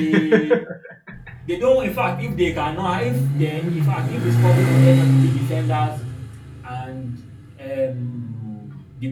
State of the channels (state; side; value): identical; both; correlation 1.00